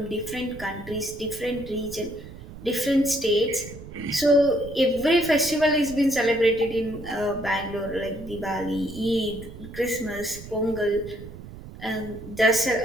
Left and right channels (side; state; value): right; noise; rumble, 14 dB below the sound